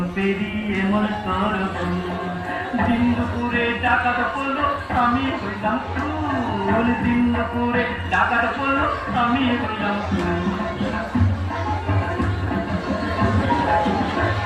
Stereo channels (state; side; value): identical; both; correlation 1.00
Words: পেরিয়ে মন দিন দুপুরে ডাকাত পড়লো আমি হইলাম ফুল দিন দুপুরে ডাকাত পড়লো আমি হইলাম ফুল